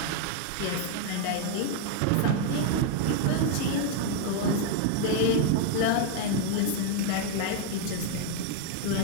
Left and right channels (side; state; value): both; different; correlation 0.00